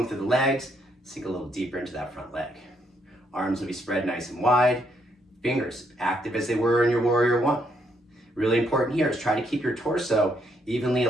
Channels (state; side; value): normal; both; correlation 0.74